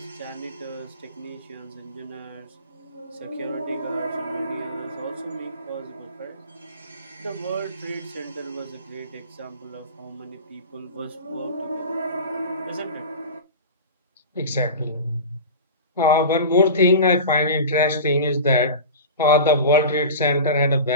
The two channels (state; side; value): inverted; both; correlation -0.31